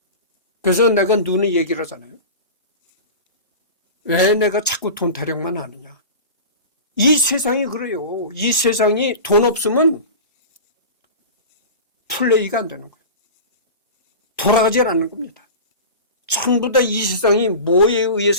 그래서 내가 눈에 얘기를 하잖아요. 왜 내가 자꾸 돈 타령만 하느냐. 이 세상이 그래요. 이 세상이 돈 없으면 플레이가 안 되는 거예요. 돌아가지 않는 겁니다. 전부 다 이 세상이 뭐에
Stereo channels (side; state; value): both; inverted; correlation -0.32